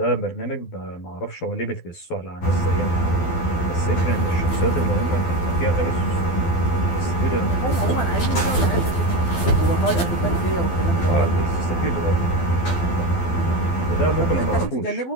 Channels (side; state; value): right; late; 12 ms